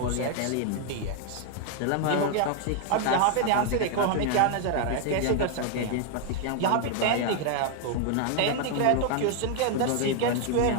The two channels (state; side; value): different; both; correlation 0.00